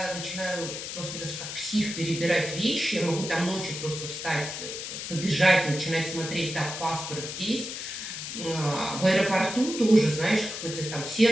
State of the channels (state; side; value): noise; left; hiss, 7 dB below the sound